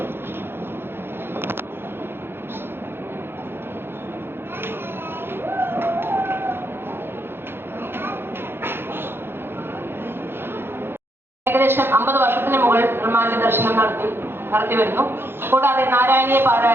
ഏകദേശം 50 വർഷത്തിന് മുകളിൽ നിർമ്മാല്യ ദർശനം നടത്തി വരുന്നു. കൂടാതെ നാരായണീയ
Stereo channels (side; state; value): left; late; 0.11 ms